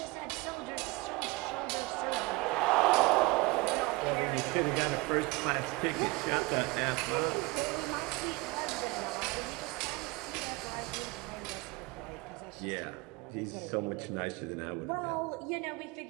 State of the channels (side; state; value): left; quieter; 23.5 dB